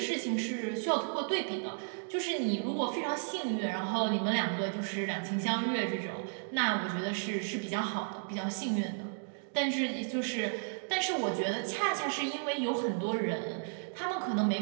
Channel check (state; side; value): silent; left; digital silence